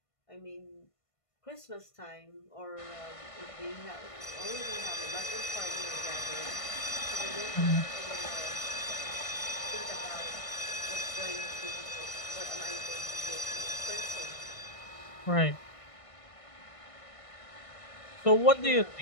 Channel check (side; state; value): right; late; 1.5 ms